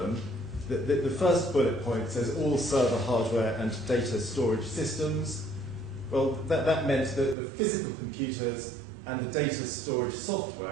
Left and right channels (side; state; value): left; drops out; at 7.4 s